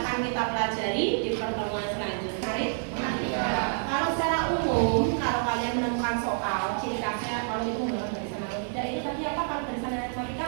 kita pelajari di pertemuan selanjutnya. Kalau secara umum, kalau kalian menemukan soal, ciri khasnya kalau itu menggunakan barisan atau tidak, itu tadi apa? Kalau barisan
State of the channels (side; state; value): left; silent; 59 dB below the other